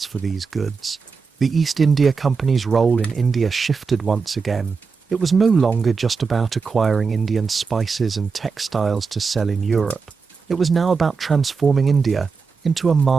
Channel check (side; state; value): left; quieter; 5.1 dB